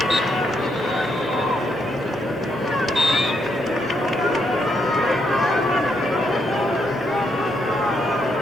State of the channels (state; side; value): normal; both; correlation 0.77